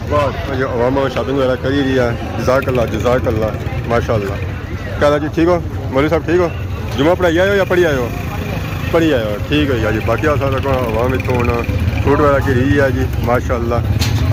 बाद जो अवाम शॉपिंग वगैरह करी रही है जज़ाकल्ला माशाल्लाह। क्या जी ठीक हो मौलवी साहब ठीक हो जुमा पढ़ाई आए हो या पढ़ी आए हो पढ़ी आए हो ठीक है जी बाकी अवाम इतों हूँ फ्रूट वगैरह की रही है जी माशाल्लाह।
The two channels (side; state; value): both; identical; correlation 1.00